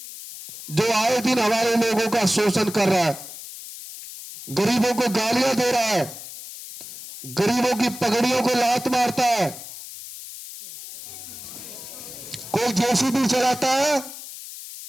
जो आए दिन हमारे लोगों का शोषण कर रहा है, गरीबों को गालियां दे रहा है, गरीबों की पगड़ियों को लात मारता है। कोई जेसीबी चलाता है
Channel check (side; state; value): left; noise; hiss, 12 dB below the sound